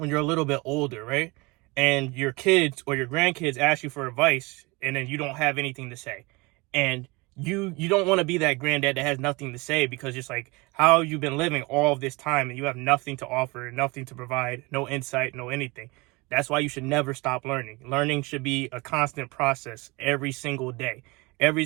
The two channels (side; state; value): left; quieter; 25.2 dB